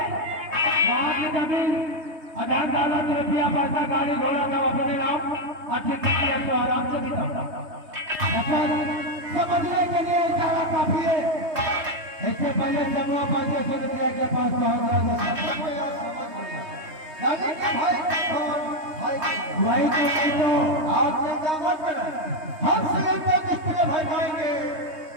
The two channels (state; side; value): late; left; 3.2 ms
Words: वहाँ की जमीन अधार दौलत रुपया पैसा गाड़ी घोड़ा सब अपने नाम अच्छे तरीके से आराम से बिताता। समझने के लिए इशारा काफी है। इससे पहले समूह पैसे सोनिया के पास पहुंच गया। वही तो आप चिंता मत करें, हम श्रीलंका किसके भाई पाएंगे